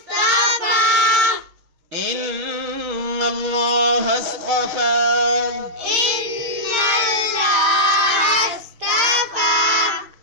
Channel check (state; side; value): late; left; 6.5 ms